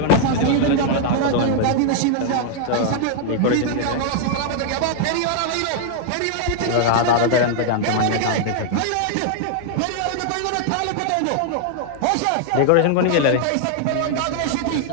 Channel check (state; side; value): different; both; correlation 0.00